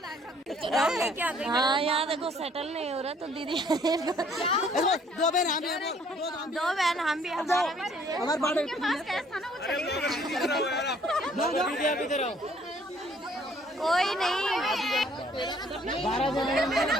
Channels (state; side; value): normal; both; correlation 0.61